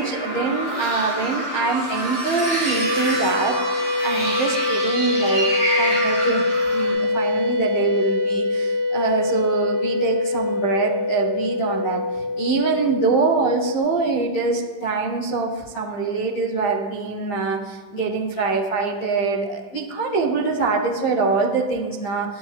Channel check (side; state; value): right; late; 15 ms